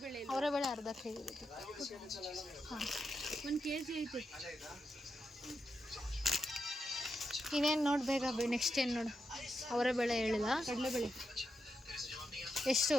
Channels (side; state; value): both; normal; correlation 0.85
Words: ಅವರೆಬೇಳೆ ಅರ್ಧ kg ಐತೆ. ಹಾಂ 1 kg ಐತೆ. ಇನ್ನೇನು ನೋಡ್ಬೇಕ. ನೆಕ್ಸ್ಟ್ ಏನು ನೋಡು, ಅವರೆಬೇಳೆ ಹೇಳಿಲ್ಲ. ಕಡಲೆಬೇಳೆ ಎಷ್ಟು?